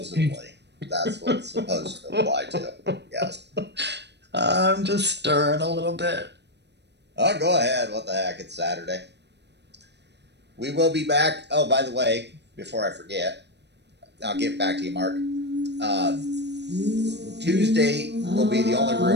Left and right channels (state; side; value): late; left; 0.50 ms